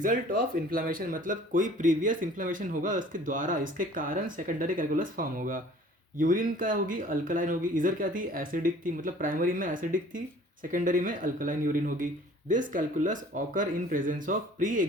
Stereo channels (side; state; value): both; normal; correlation 0.51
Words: ऑफ इन्फ्लामेशन, मतलब कोई प्रीवियस इन्फ्लामेशन होगा उसके द्वारा, इसके कारण सेकेंडरी कैलकुलस फॉर्म होगा। यूरिन क्या होगी, अल्कलाइन होगी, इधर क्या थी, एसिडिक थी, मतलब प्राइमरी में एसिडिक थी, सेकेंडरी में अल्कलाइन यूरिन होगी। This calculus occur in presence of pre